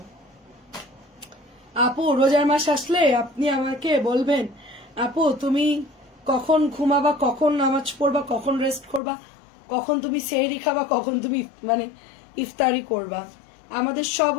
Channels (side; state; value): right; drops out; at 9.0 s